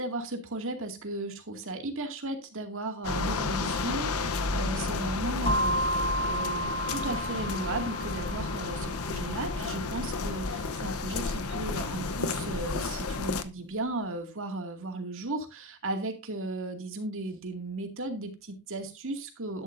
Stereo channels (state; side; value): normal; both; correlation 0.11